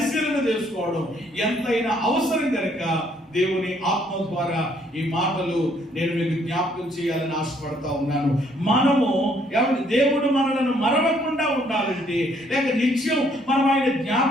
చేసుకోవడం ఎంతైనా అవసరం కనుక దేవుని ఆత్మ ద్వారా ఈ మాటలు నేను మీకు జ్ఞాపకం చేయాలని ఆశపడతా ఉన్నాను. మనము ఏమంటే దేవుడు మనలను మరవకుండా ఉండాలంటే లేక నిత్యం మనం ఆయన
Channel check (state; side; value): normal; both; correlation 0.66